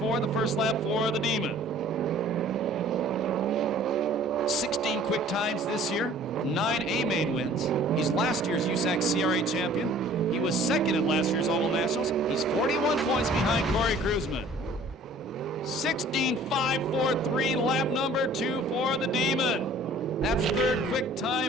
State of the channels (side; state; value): both; normal; correlation 0.51